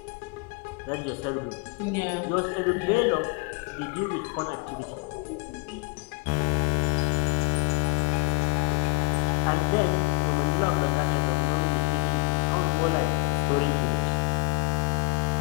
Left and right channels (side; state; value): right; quieter; 28.1 dB